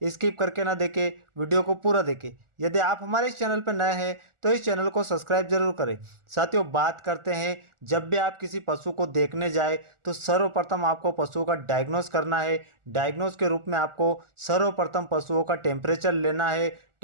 स्किप करके ना देखें, वीडियो को पूरा देखें। यदि आप हमारे इस चैनल पर नए हैं तो इस चैनल को सब्सक्राइब जरूर करें। साथियों बात करते हैं, जब भी आप किसी पशु को देखने जाए तो सर्वप्रथम आपको पशु का डायग्नोस करना है। डायग्नोस के रूप में आपको सर्वप्रथम पशुओं का टेम्परेचर लेना है।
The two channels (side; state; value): left; late; 1.4 ms